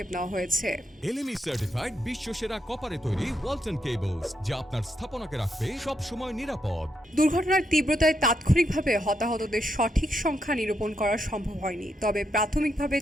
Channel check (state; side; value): normal; both; correlation 0.80